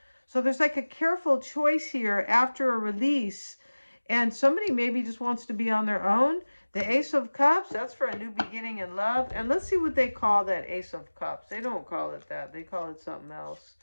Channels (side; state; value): both; inverted; correlation -1.00